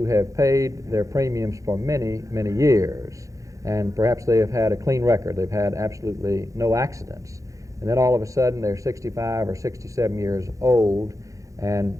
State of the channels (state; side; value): late; left; 0.16 ms